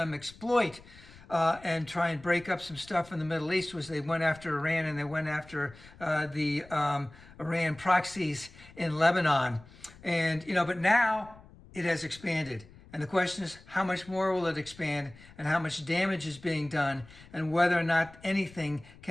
exploit and try and break up some stuff in the Middle East. Was they went after Iran and they went after the Iran proxies in Lebanon. And, but now it has expanded. And the question is, how much more will it expand and how much damage is being done and whether or not anything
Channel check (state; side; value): noise; left; rumble, 22 dB below the sound